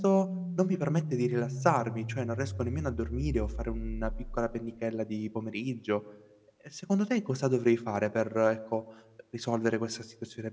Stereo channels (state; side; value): identical; both; correlation 1.00